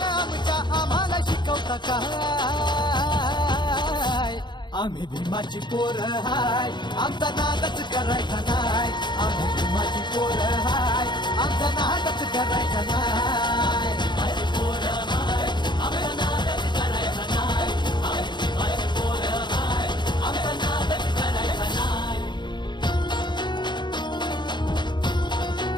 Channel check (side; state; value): right; late; 0.22 ms